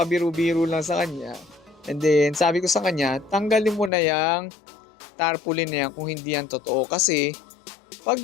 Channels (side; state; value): right; drops out; at 3.9 s